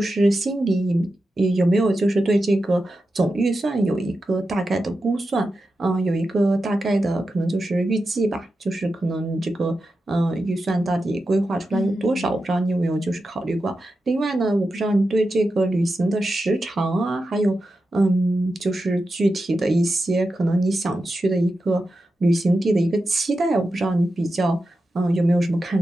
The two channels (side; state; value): both; normal; correlation 0.90